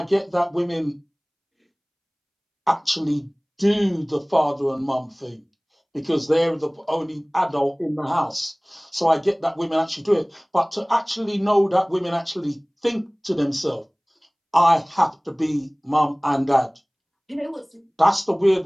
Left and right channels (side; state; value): both; identical; correlation 1.00